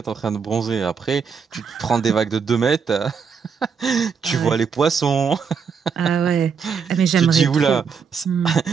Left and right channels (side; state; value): left; quieter; 6.2 dB